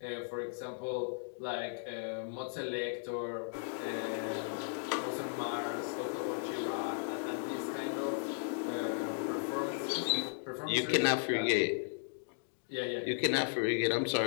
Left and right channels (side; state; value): right; silent; digital silence